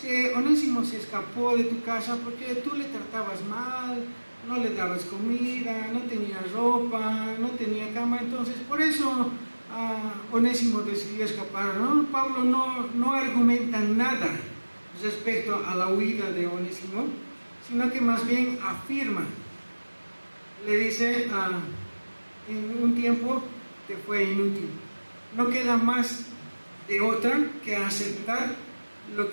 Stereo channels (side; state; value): both; inverted; correlation -1.00